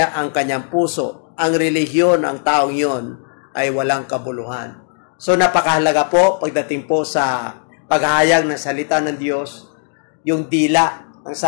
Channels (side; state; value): right; silent; digital silence